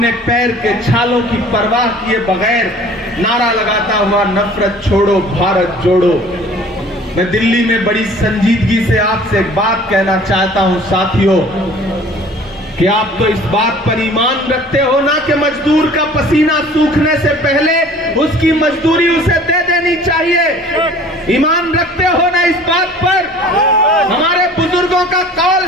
पैर के छालों की परवाह किए बगैर नारा लगाता हुआ नफरत छोड़ो भारत जोड़ो। मैं दिल्ली में बड़ी संजीदगी से आपसे एक बात कहना चाहता हूं साथियों, कि आप तो इस बात पर ईमान रखते हो ना कि मजदूर का पसीना सूखने से पहले उसकी मजदूरी उसे दे देनी चाहिए। ईमान रखते हो ना इस बात पर? हमारे बुजुर्गों का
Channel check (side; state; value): both; normal; correlation 0.49